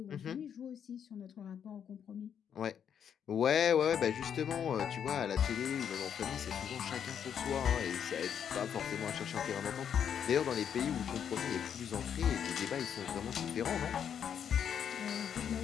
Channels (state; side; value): quieter; right; 8.3 dB